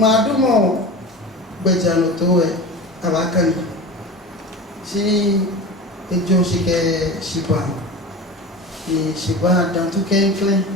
do mo gbejano to e abakan si ejo shike shiba ni shiba dan to kenkle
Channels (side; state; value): both; normal; correlation 0.32